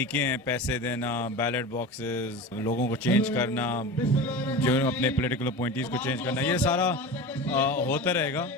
हैं पैसे देना, बैलेट बॉक्सेस, लोगों को चेंज करना, जो अपने पॉलिटिकल अपॉइंटीज़ को चेंज करना, ये सारा होता रहेगा।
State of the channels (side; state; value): both; normal; correlation 0.30